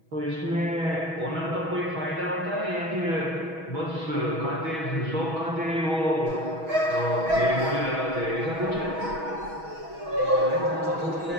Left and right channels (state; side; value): late; left; 6.2 ms